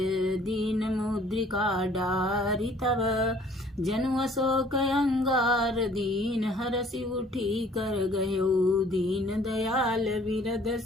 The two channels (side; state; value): both; normal; correlation 0.56